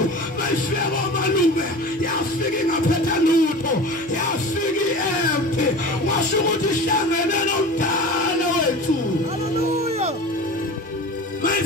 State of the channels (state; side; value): normal; both; correlation 0.35